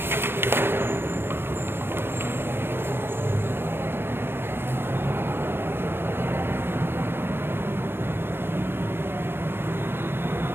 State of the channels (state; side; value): late; left; 0.11 ms